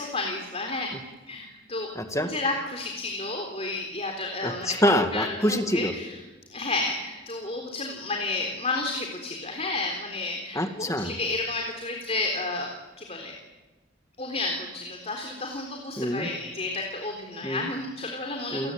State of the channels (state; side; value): normal; both; correlation 0.25